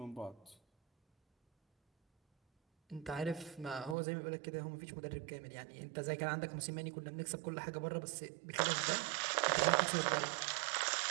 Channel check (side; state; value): left; drops out; at 4.0 s